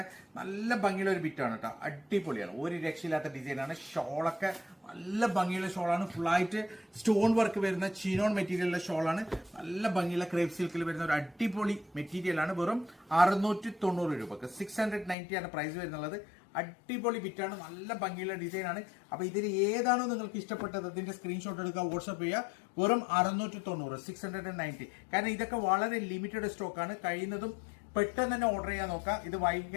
നല്ല ഭംഗിയുള്ള ഒരു ബിറ്റാണ് കേട്ടോ, അടിപൊളിയാണ്, ഒരു രക്ഷയില്ലാത്ത ഡിസൈനാണ്. ഷോളൊക്കെ നല്ല ഭംഗിയുള്ള ഷോളാണ്, ഫുള്ളായിട്ട് സ്റ്റോൺ വർക്ക് വരുന്ന ചിനോൺ മെറ്റീരിയലുള്ള ഷോളാണ്. നല്ല ഭംഗിയുള്ള ക്രേപ്പ് സിൽക്കിൽ വരുന്ന ഒരു അടിപൊളി മെറ്റീരിയൽ ആണ്. വെറും 690 രൂപക്ക് 690 ആണ് പ്രൈസ് വരുന്നുള്ളത്. അടിപൊളി ബിറ്റാണ്, നല്ല ഭംഗിയുള്ള ഡിസൈൻ ആണ്. അപ്പൊ ഇതിൽ ഏതാണോ നിങ്ങൾക്ക് ഇഷ്ടപ്പെട്ടത് അതിന്റെ സ്ക്രീൻഷോട്ട് എടുക്കുക, വാട്സ്ആപ്പ് ചെയ്യുക. വെറും 690 690. കാരണം ഇതൊക്കെ വളരെ ലിമിറ്റഡ് സ്റ്റോക്ക് ആണ്. കഴിയുന്നതും പെട്ടെന്ന് തന്നെ ഓർഡർ ചെയ്യാൻ നോക്കാം. ഇത് വൈകി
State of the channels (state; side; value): drops out; right; at 15.2 s